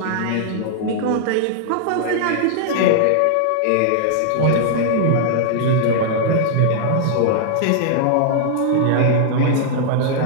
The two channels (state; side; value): different; both; correlation -0.01